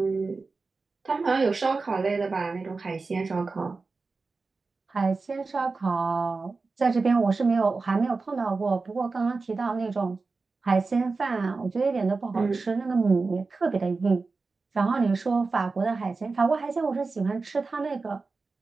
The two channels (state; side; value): quieter; left; 4.0 dB